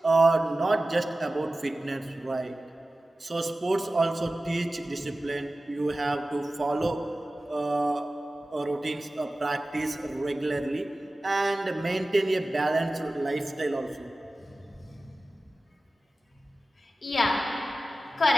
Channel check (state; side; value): normal; both; correlation 0.96